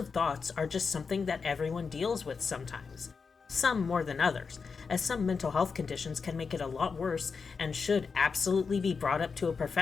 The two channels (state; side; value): quieter; right; 5.2 dB